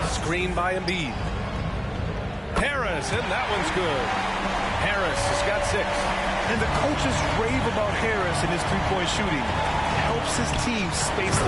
Screen by Embiid. Harris, and that one's good. Harris has got 6. And the coaches rave about Harris and his three-point shooting. Helps his team space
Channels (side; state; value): both; identical; correlation 1.00